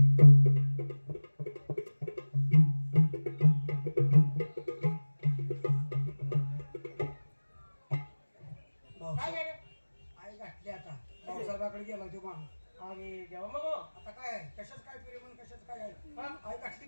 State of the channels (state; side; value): inverted; both; correlation -1.00